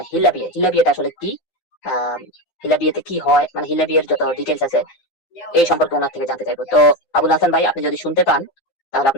হিল্লা বিয়েটা আসলে কি, আম, হিল্লা বিয়েতে কি হয়, মানে হিল্লা বিয়ের যত ডিটেলস আছে এই সম্পর্কে ওনার থেকে জানতে চাইবো। তো আবুল হাসান ভাই, আপনি যদি শুনতে পান তাহলে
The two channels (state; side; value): late; right; 9.8 ms